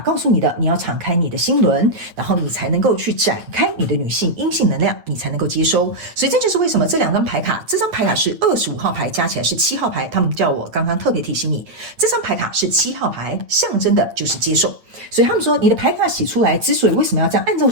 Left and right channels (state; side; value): late; left; 8.9 ms